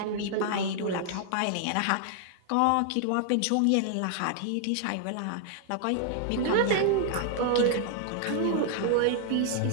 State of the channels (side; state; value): both; different; correlation 0.00